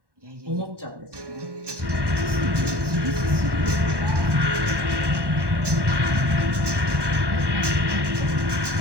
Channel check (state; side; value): late; left; 1.1 ms